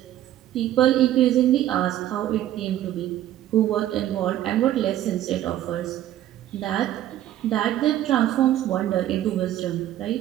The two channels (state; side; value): quieter; left; 12.8 dB